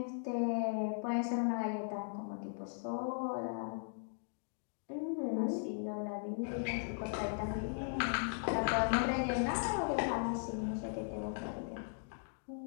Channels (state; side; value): silent; right; digital silence